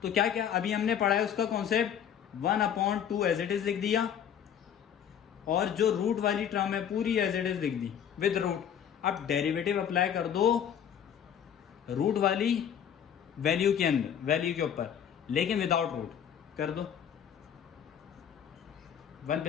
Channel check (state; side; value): quieter; right; 8.9 dB